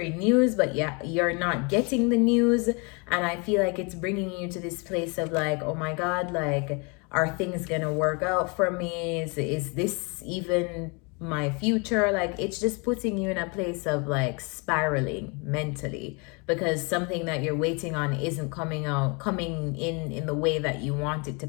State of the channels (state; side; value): quieter; right; 31.9 dB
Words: news, but yeah, you're not getting the news. And I feel like it's bringing you to this place of like, oh my God, like, are things gonna work out for me? Is this even my future? Like, it's just putting you in a place of like spiraling mentally, because something that you're waiting on isn't coming in the way that you want it to